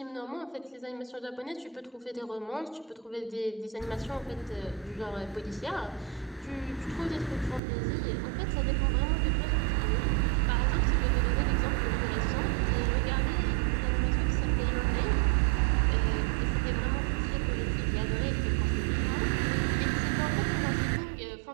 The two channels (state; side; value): drops out; left; at 7.6 s